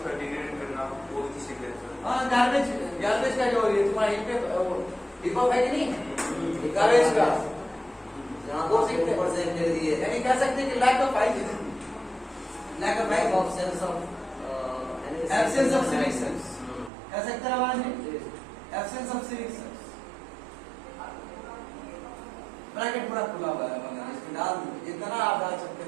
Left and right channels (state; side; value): drops out; left; at 16.9 s